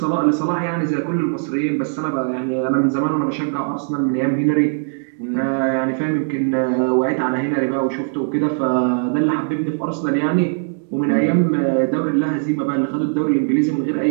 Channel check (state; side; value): silent; left; digital silence